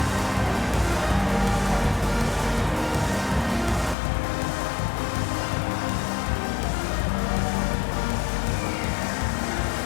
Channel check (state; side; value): drops out; right; at 4.0 s